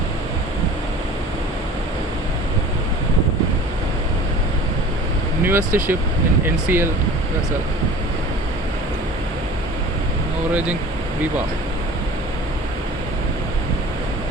Newest ship in NCL vessel. Norwegian Viva.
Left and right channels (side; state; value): both; normal; correlation 0.42